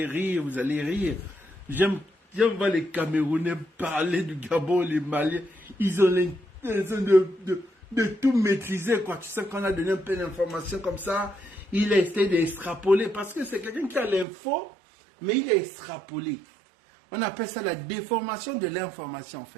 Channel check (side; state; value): left; drops out; at 14.2 s